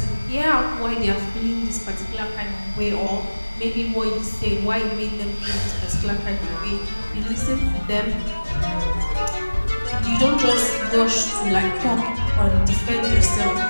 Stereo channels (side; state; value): both; inverted; correlation -1.00